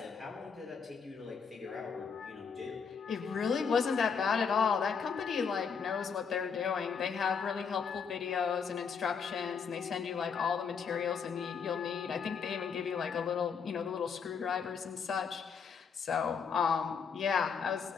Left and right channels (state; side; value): quieter; right; 6.1 dB